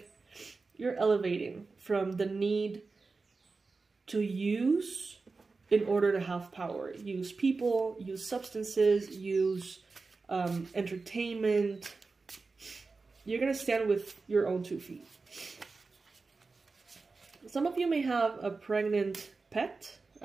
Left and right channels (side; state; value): left; quieter; 4.1 dB